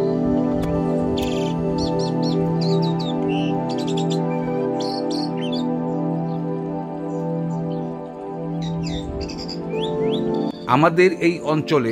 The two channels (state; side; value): identical; both; correlation 1.00